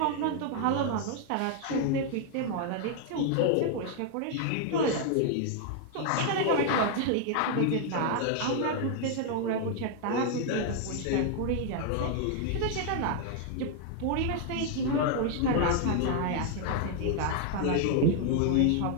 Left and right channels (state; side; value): different; both; correlation 0.00